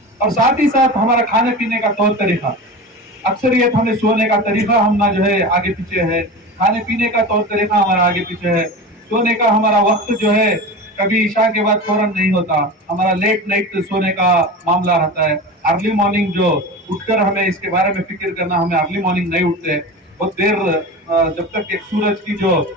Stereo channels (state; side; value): normal; both; correlation 0.29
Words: और साथ ही साथ हमारा खाने पीने का तौर तरीका, अक्सरियत हमें सोने का तरीका हम ना जो है आगे पीछे है, खाने पीने का तौर तरीका हमारा आगे पीछे है, सोने का हमारा वक्त जो है कभी ईशा के बाद फौरन नहीं होता, हमारा लेट नाइट सोने का मामला रहता है। अर्ली मॉर्निंग जो उठकर हमें इसके बारे में फिक्र करना, हमें अर्ली मॉर्निंग नहीं उठते, बहुत देर जब तक एक सूरज की जो